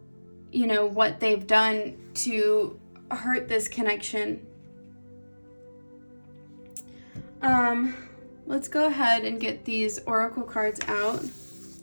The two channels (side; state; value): both; inverted; correlation -1.00